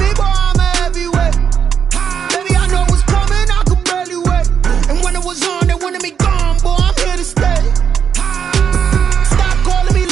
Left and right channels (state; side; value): quieter; left; 7.5 dB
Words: boy, I'm a heavyweight. Baby, I know what's coming, I could barely wait. And when it was on, they wanted me gone, boy, I'm here to stay. Stop calling me